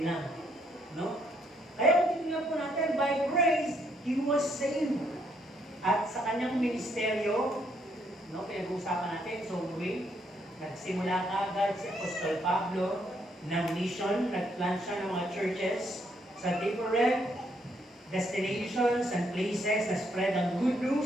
lang. No? Kaya kung titignan po natin, by grace, he was saved. At sa kanyang ministeryo, no, pinag-uusapan natin, so nagsimula agad si Apostol Pablo ng mission, nag-plant siya ng mga churches sa different destinations and places na spread ang good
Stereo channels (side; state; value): both; normal; correlation 0.72